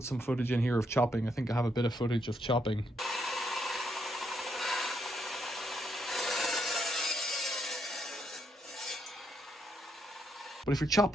some footage in here of chopping. I think I have a bit of footage of chopping. But if you're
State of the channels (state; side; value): normal; both; correlation 0.77